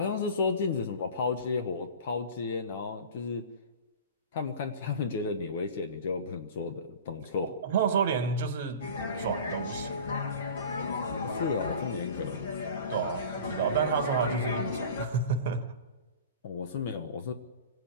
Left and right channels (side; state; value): both; inverted; correlation -0.37